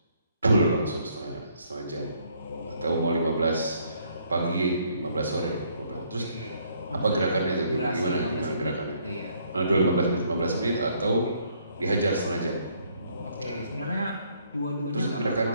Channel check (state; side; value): inverted; both; correlation -0.67